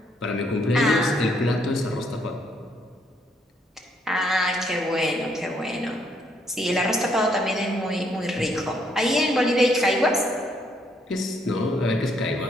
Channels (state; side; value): normal; both; correlation 0.71